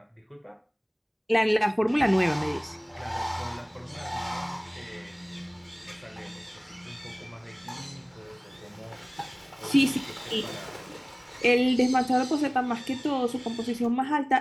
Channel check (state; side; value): identical; both; correlation 1.00